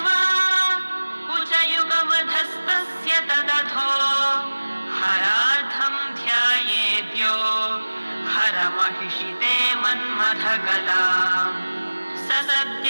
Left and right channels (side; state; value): both; inverted; correlation -1.00